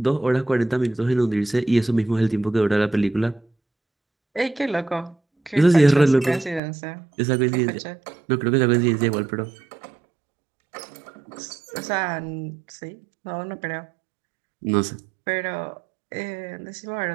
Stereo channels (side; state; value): left; drops out; at 6.6 s